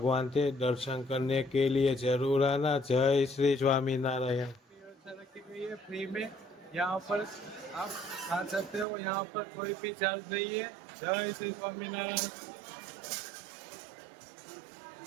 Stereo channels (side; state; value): left; drops out; at 8.8 s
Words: के दर्शन करने के लिए जरूर आना। जय श्री स्वामीनारायण। रखी गई है फ्री में, यहाँ पर आप खा सकते हो, यहाँ पर कोई भी चार्ज नहीं है। जय श्री स्वामीनारायण।